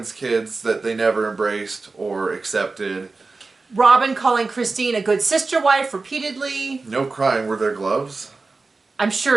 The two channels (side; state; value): left; quieter; 3.8 dB